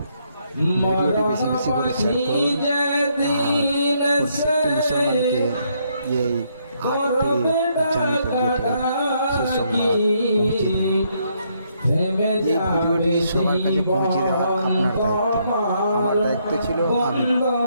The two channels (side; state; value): both; inverted; correlation -0.73